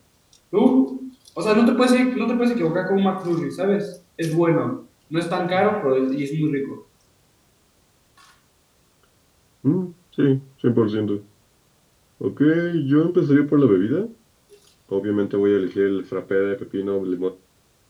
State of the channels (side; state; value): both; identical; correlation 1.00